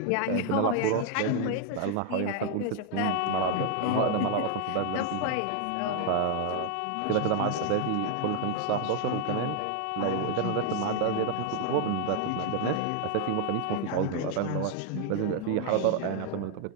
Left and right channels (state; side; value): different; both; correlation 0.00